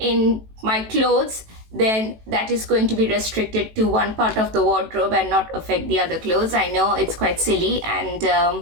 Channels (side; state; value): left; late; 18 ms